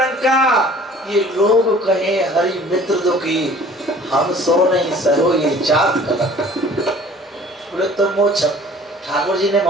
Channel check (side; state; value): both; normal; correlation 0.50